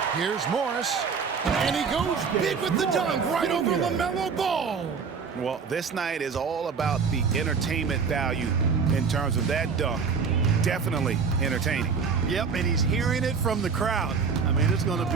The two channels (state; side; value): quieter; left; 5.7 dB